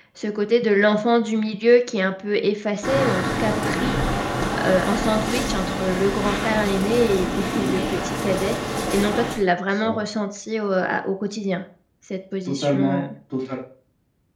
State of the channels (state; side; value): identical; both; correlation 1.00